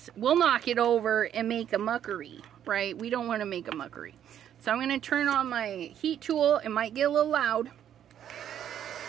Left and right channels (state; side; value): quieter; left; 10.0 dB